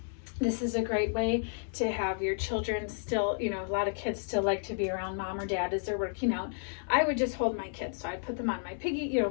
this is a great way to have your children still, a lot of kids still like to be around mom or dad as they're working out. I would just hold my kids. So I'd put them on my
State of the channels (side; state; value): right; silent; 57 dB below the other